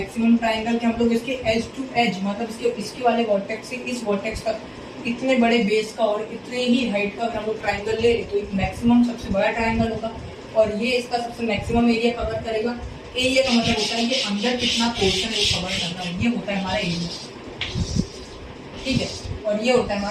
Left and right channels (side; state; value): both; identical; correlation 1.00